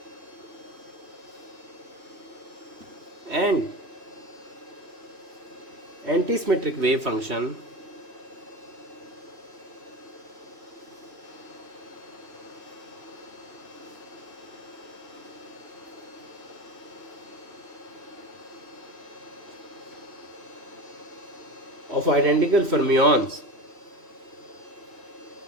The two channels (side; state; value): left; late; 2.7 ms